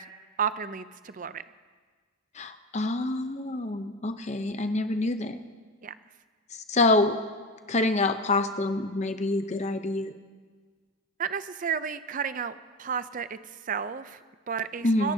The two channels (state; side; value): normal; both; correlation 0.24